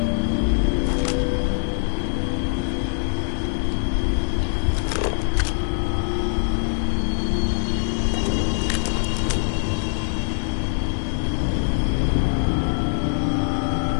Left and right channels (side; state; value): right; silent; digital silence